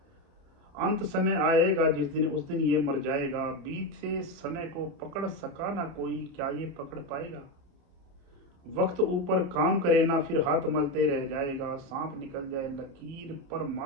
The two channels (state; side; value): late; left; 28 ms